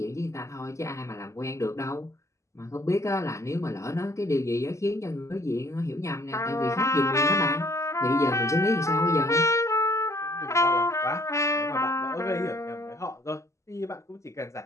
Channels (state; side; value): late; right; 0.14 ms